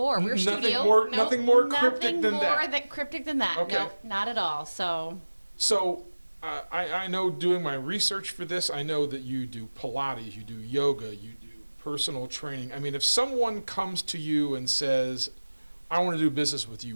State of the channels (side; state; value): both; inverted; correlation -1.00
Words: We're nothing more cryptic than that. Okay. No, not at all. So I know, doing my research for this, I know that you do Pilates, you do yoga, you do personal training. I mean, if someone comes to you and says, I want to do business with you,